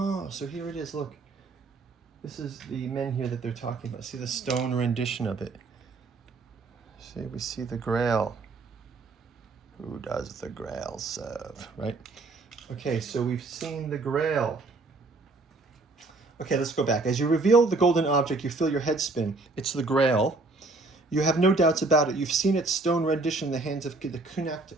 so here it is, look. This is the menhir that they're talking about. See the stone rendition of it. See, we see the Grail. Who does the Grail serve, right? Okay, so we've seen the Grail. Okay, let's go back. As you reveal the golden object, you feel your head spin. It's the Grail. You have no doubts about it. You've seen its stone rendition in the hands of the Canuck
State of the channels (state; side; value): quieter; left; 3.5 dB